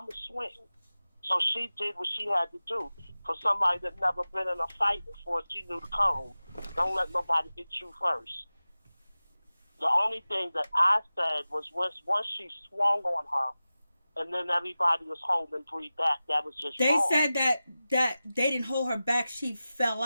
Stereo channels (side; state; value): both; inverted; correlation -0.96